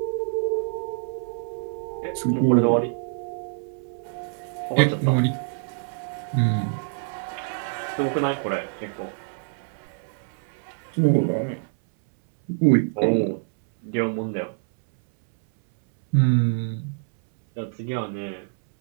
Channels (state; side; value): silent; left; 61 dB below the other